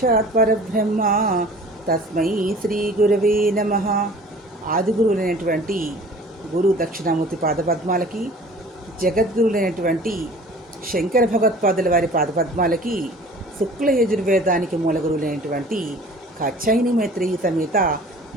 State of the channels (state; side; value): normal; both; correlation 0.46